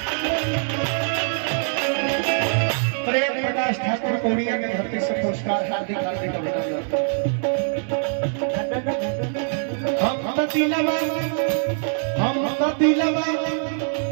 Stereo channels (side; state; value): left; silent; digital silence